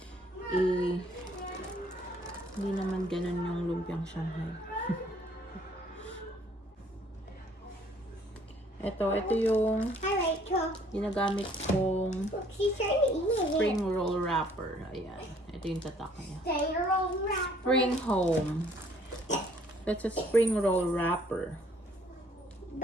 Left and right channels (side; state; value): both; normal; correlation 0.60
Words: Hindi naman ganun yung lumpiang Shanghai. Ito yung Hi, Rachel. ginagamit kong Look, she's trying to eat it. spring roll wrapper. Ayan. Ito yung tatak niya. Stay roll wrap. Spring home. That's a spring roll wrapper.